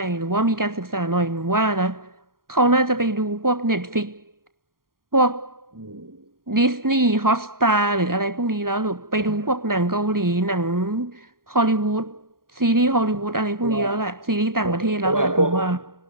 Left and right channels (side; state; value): left; late; 0.91 ms